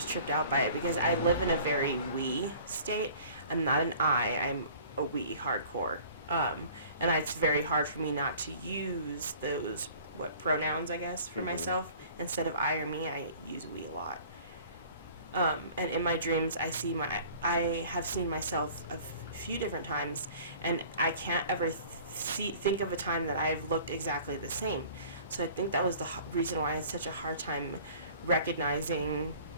tripped out by it because I live in a very we state. I'm not an I'm a we hardcore. And it's very hard for me not to use those, pronouns, I guess, for myself. Instead of I or me, I use we a lot. And in my dreams, I have seen myself a few different times, and I can't ever think of a time that I've looked exactly the same. So I think that was the reason why I had such a hard time recognizing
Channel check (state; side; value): inverted; both; correlation -0.49